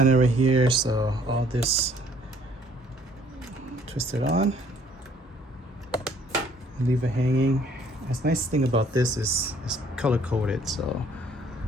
right here. So all this, twist it on, leave it hanging. The nice thing about this is it's color coded. So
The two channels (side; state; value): both; normal; correlation 0.60